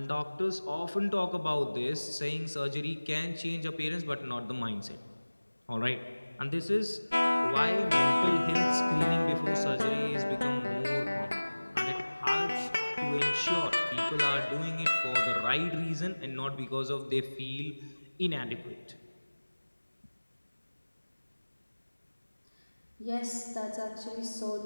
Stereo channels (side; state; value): both; inverted; correlation -1.00